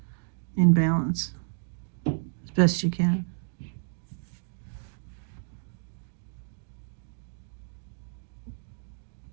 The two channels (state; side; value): silent; left; digital silence